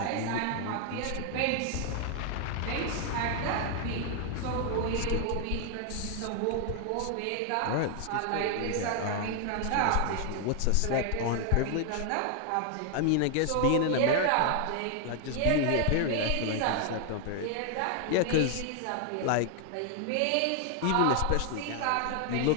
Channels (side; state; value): both; different; correlation 0.00